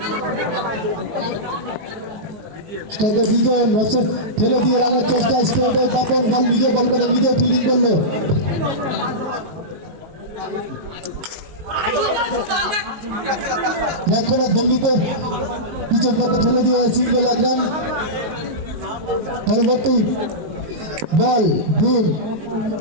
স্ট্রাইকে বিজন ফেলে দিয়ে রানের চেষ্টা স্ট্রেটে বাপন বল নিজে বল করে নিজে ফিল্ডিং করলো রক্ষণার ভঙ্গিতে পিছন পথে ঠেলে দিয়ে সিঙ্গেল এক রান পরবর্তী বল ভুল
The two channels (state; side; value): late; left; 18 ms